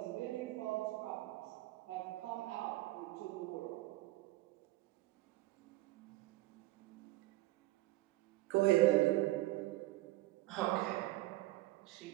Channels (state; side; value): quieter; left; 18.6 dB